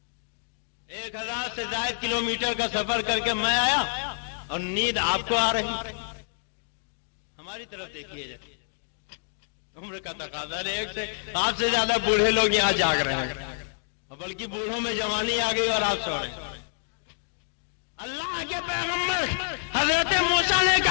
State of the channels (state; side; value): silent; right; digital silence